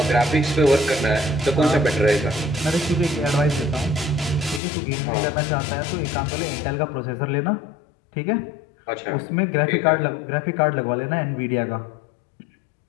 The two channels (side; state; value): right; drops out; at 4.6 s